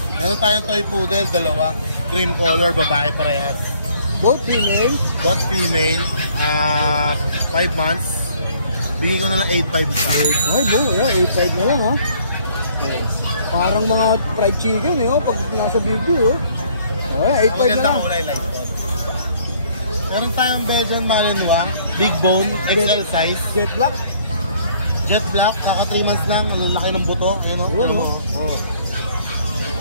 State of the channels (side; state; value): both; inverted; correlation -0.61